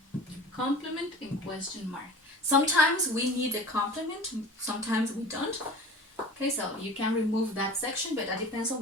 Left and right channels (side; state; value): both; normal; correlation 0.38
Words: complement and question mark. Sometimes we need a complement, sometimes we don't. Okay, so you can remove that section, but that depends on